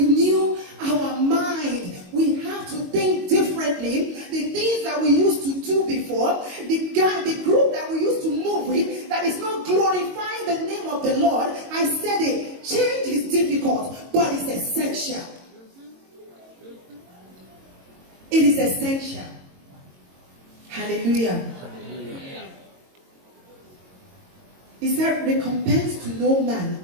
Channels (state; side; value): late; left; 22 ms